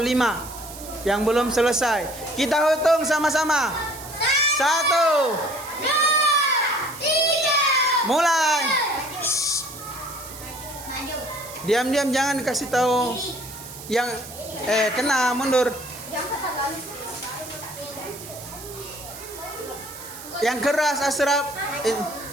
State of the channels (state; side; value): noise; right; hiss, 14 dB below the sound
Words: yang belum selesai. Kita hitung sama-sama. 1, 2, 3. mulai. Maju. Diam-diam, jangan kasih tahu yang kena, mundur. Yang keras, Asraf.